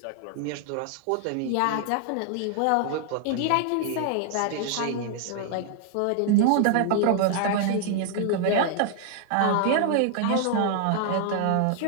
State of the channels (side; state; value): both; different; correlation 0.00